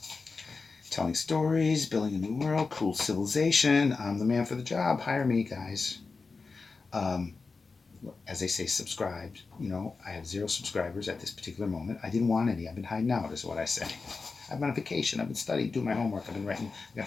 telling stories, building a new world, cool civilization. I'm the man for the job. Hire me, guys. Um, as they say, subscribed. You know, I have 0 subscribers at this particular moment. I didn't want any. I've been hiding out, is what I say. I've been on vacation. I've been studying, doing my homework. I've been writing. I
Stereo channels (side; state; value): right; quieter; 4.3 dB